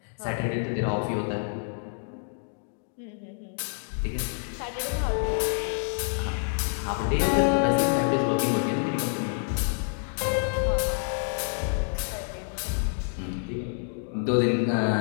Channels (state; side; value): silent; right; 60 dB below the other